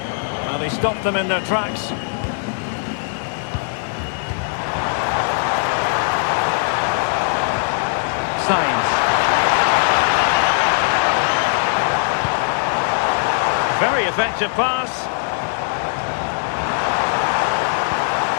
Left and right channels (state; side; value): silent; right; digital silence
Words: And But he stopped them in their tracks. Sainz. Very effective pass.